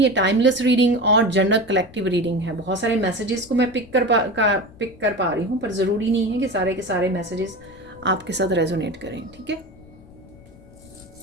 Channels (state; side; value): noise; left; rumble, 23 dB below the sound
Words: टाइमलेस रीडिंग और जनरल कलेक्टिव रीडिंग है। बहुत सारे मैसेजेस को मैं पिक कर पा रही हूँ, पर ज़रूरी नहीं है कि सारे के सारे मैसेजेस आपके साथ रेजोनेट करें, ठीक है।